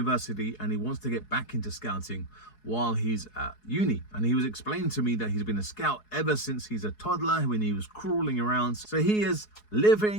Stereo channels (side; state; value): right; late; 4.7 ms